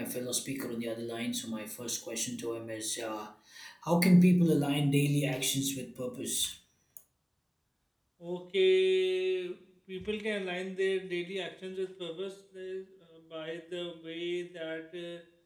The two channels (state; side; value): identical; both; correlation 1.00